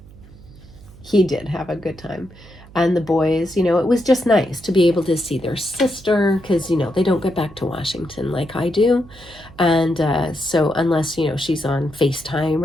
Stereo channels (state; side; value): noise; right; hum, 21 dB below the sound